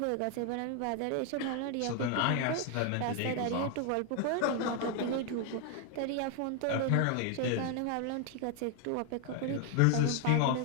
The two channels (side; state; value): both; different; correlation 0.01